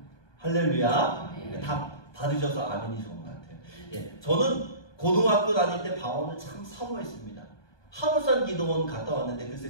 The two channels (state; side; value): late; right; 1.2 ms